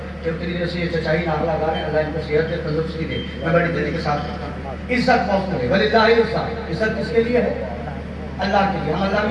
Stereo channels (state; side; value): identical; both; correlation 1.00